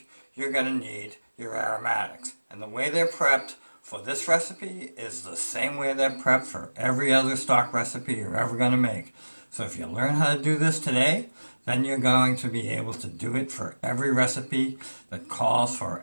you're going to need your aromatics. And the way they're prepped for this recipe is the same way they're prepped for every other stock recipe you're ever going to make. So if you learn how to do this today, then you're going to be able to do it for every recipe that calls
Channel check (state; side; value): inverted; both; correlation -1.00